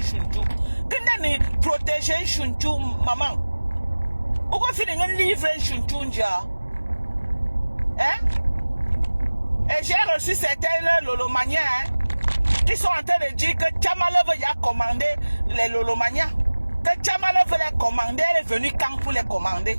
chunchu. De protéger chunchu, maman. Ou fait des livres chunchu. Hein? Et j'ai reçu certains Lolomania qui sont en train de dire que Tchamalov a commandé les Lolomania. Que Tchamalov les commandé, elle est venue quand pour les commander.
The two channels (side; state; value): both; inverted; correlation -1.00